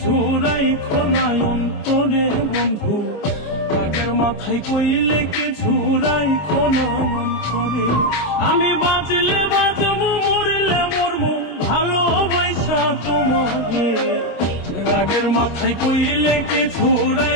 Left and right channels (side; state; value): right; late; 25 ms